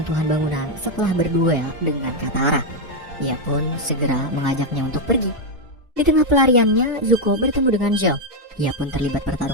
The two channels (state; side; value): normal; both; correlation 0.02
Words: bangunan setelah berduel dengan Katara. Ia pun segera mengajaknya untuk pergi. Di tengah pelariannya, Zuko bertemu dengan Zhao. Ia pun terlibat